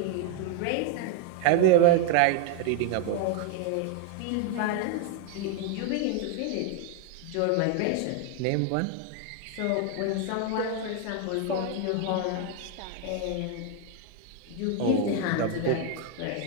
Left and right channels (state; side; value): different; both; correlation 0.01